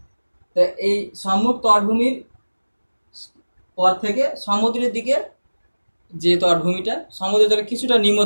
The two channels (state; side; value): inverted; both; correlation -1.00